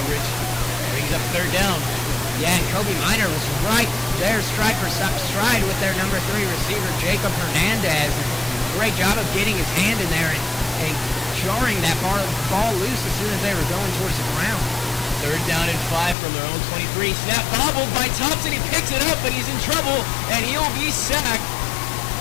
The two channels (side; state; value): right; drops out; at 16.2 s